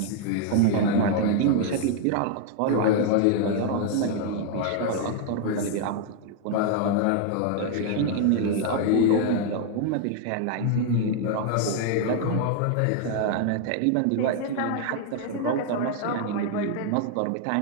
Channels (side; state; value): both; different; correlation 0.00